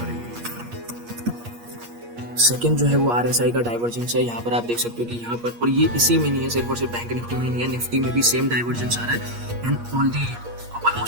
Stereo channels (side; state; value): left; late; 8.5 ms